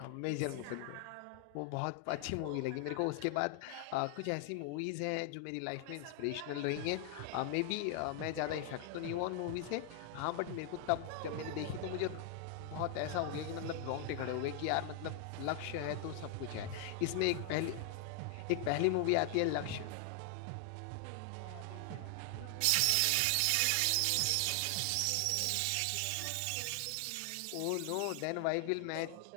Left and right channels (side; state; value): both; different; correlation 0.00